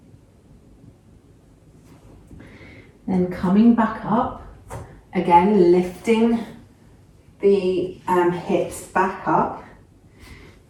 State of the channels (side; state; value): both; identical; correlation 1.00